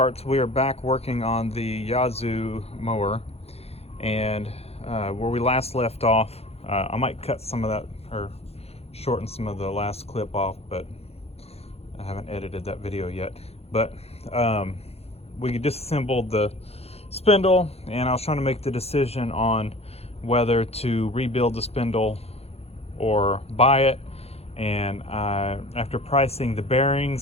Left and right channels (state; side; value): late; right; 0.30 ms